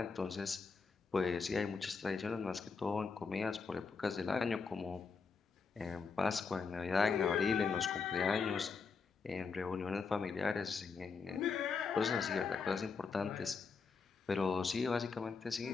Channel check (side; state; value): right; quieter; 5.1 dB